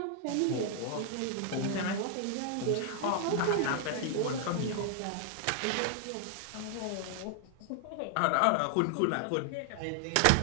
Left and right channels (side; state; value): both; different; correlation 0.00